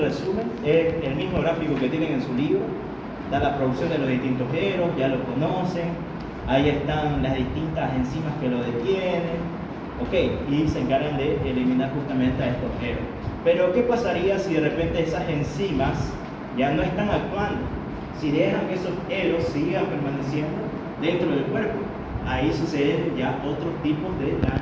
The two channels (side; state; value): both; identical; correlation 1.00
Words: Es el mismo gráfico que tienen en su libro. Da la producción de los distintos eros, ya lo conocen. Ahí están las distintas enzimas que lo detienen. Ok, y se encargan de eliminar justamente a estos eros. Pero ¿qué pasaría si de repente esas enzimas ya no están actuando? Si dejan que esos eros sigan permaneciendo dentro del cuerpo, ahí suceden ya otros tipos de